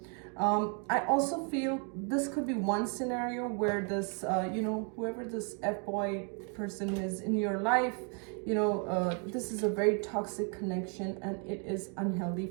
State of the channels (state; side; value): quieter; left; 39.6 dB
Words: I also feel this could be one scenario where this, whoever this F-boy person is in your life, this is a very toxic connection and it is unhealthy